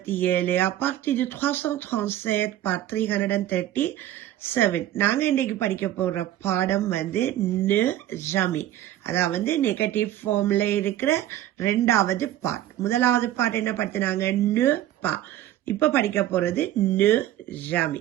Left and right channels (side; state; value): left; quieter; 13.1 dB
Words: à partir de 337 par 337. நாங்க இன்னைக்கு படிக்க போற பாடம் ந ஜமி, அதாவது நெகட்டிவ் ஃபார்ம்ல இருக்கிற ரெண்டாவது பார்ட். முதலாவது பார்ட் என்ன படுத்தினாங்க? ந பா. இப்ப படிக்க போறது ந